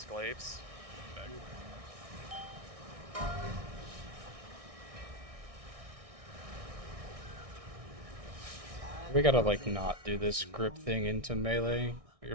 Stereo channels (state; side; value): late; left; 1.6 ms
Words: glaives. We gotta like not do this grip thing into melee.